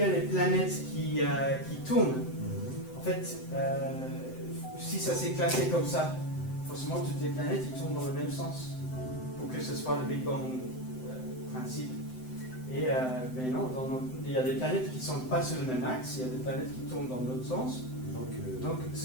a les planètes qui tournent, en fait, si ça s'est classé comme ça, forcément toutes les planètes ils tournent dans le même sens pour que ce soit le Big Bang principe. Et mais non, il y a des planètes qui ne sont pas sur le même axe, il y a des planètes qui tournent dans l'autre sens. Donc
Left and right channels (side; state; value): right; late; 7.8 ms